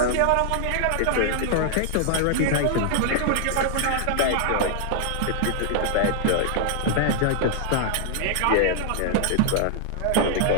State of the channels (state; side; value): different; both; correlation 0.00